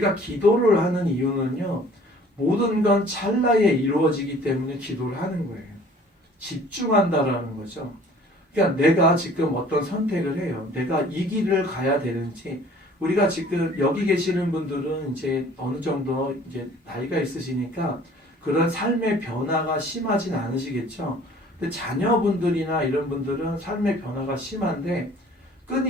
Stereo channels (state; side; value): normal; both; correlation 0.52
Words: 기도를 하는 이유는요. 모든 건 찰나에 이루어지기 때문에 기도를 하는 거예요. 집중한다라는 거죠. 그러니까 내가 지금 어떤 선택을 해요. 내가 이 길을 가야 되는지 우리가 지금 여기 계시는 분들은 이제 어느 정도 이제 나이가 있으시니까 그런 삶의 변화가 심하진 않으시겠죠. 근데 자녀분들이나 이런 분들은 삶의 변화가 심한데